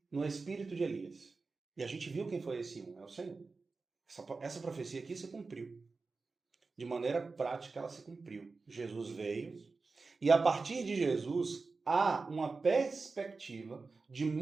no espírito de Elias. E a gente viu quem foi esse é o Senhor. Essa profecia aqui se cumpriu. De maneira prática, ela se cumpriu. Jesus veio, e a partir de Jesus, há uma perspectiva de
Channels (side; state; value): left; quieter; 4.1 dB